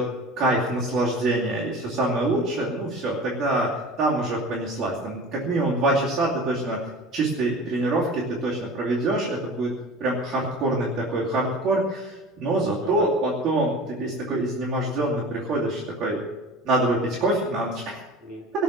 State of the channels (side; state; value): both; normal; correlation 0.38